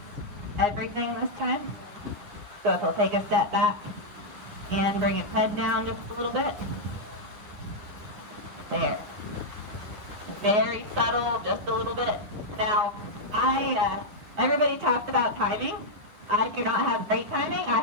everything this time. So if he'll take a step back and bring his head down just a little bit. There. Very subtle, just a little bit. Now, everybody talks about timing. I do not have great timing. I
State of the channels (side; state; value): left; late; 9.9 ms